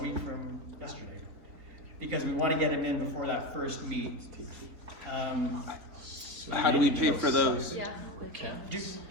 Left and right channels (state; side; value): late; left; 3.9 ms